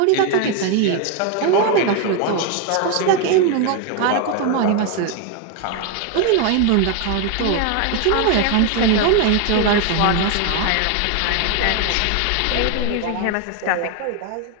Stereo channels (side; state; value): both; different; correlation 0.01